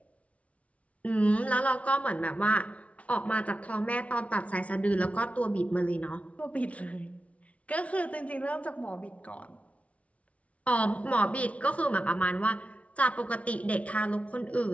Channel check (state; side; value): late; right; 0.065 ms